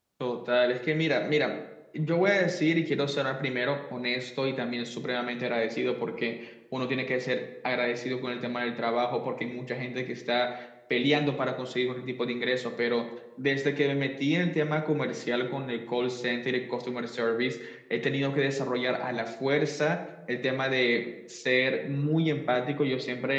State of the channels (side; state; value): both; identical; correlation 1.00